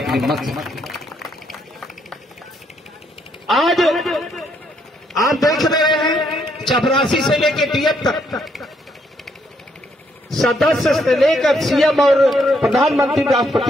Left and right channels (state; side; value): normal; both; correlation 0.73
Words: मत से। आज आप देख रहे हैं चपरासी से लेकर डीएम तक, सदस्य से लेकर सीएम और प्रधानमंत्री,